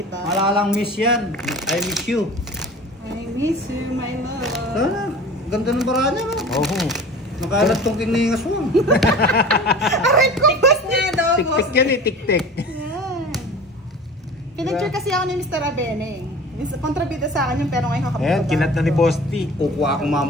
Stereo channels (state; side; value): normal; both; correlation 0.39